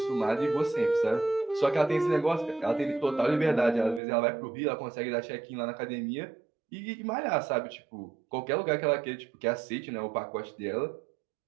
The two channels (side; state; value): left; drops out; at 4.0 s